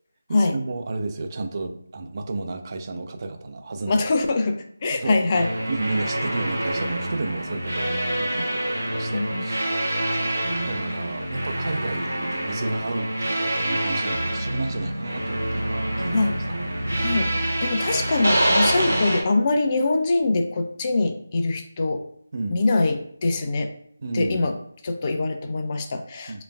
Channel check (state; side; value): inverted; both; correlation -0.92